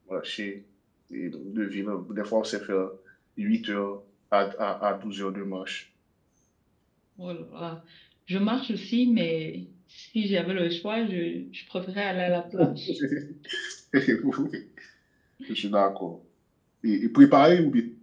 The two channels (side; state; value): both; identical; correlation 1.00